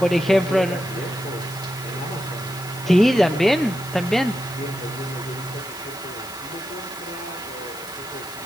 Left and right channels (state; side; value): noise; left; hiss, 17 dB below the sound